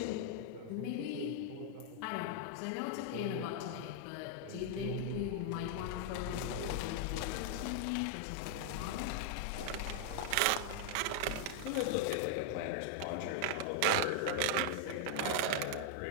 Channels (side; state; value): both; different; correlation -0.01